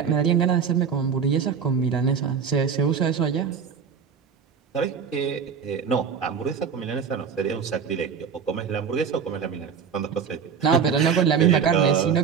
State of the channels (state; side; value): quieter; left; 6.6 dB